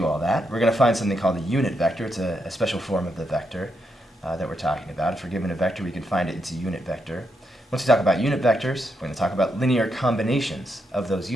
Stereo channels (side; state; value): both; normal; correlation 0.81